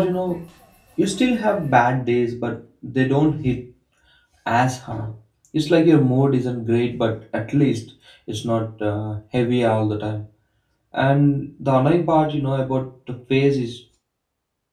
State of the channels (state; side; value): identical; both; correlation 1.00